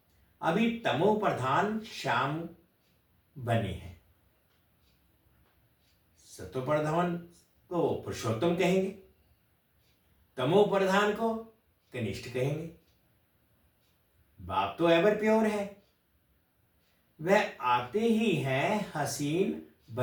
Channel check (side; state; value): both; identical; correlation 1.00